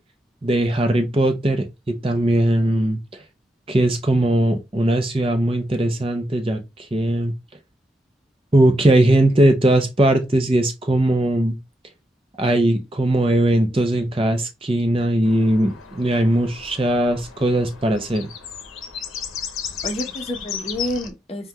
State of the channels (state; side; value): normal; both; correlation 0.83